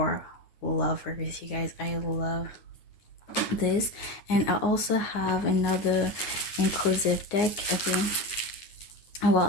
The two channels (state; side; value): late; right; 9.6 ms